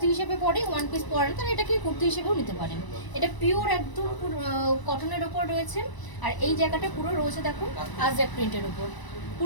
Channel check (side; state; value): right; late; 1.0 ms